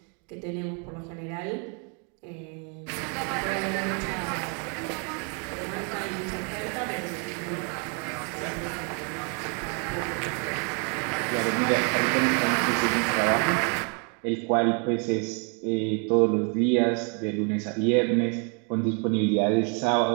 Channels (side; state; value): left; quieter; 37.5 dB